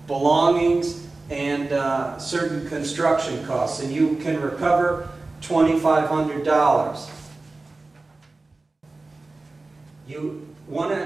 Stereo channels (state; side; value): quieter; left; 3.4 dB